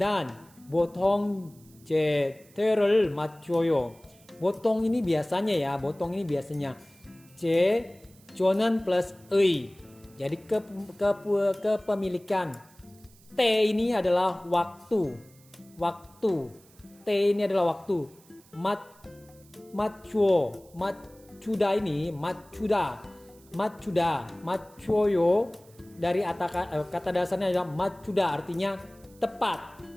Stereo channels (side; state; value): right; noise; hiss, 27 dB below the sound